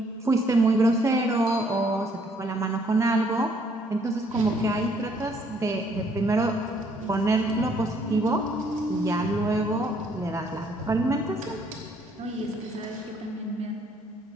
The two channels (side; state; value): both; normal; correlation 0.66